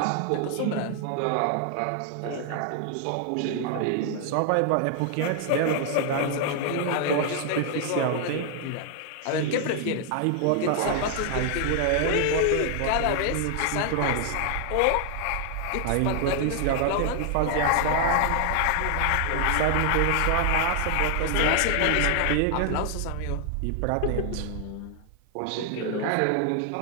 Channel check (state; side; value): different; both; correlation 0.00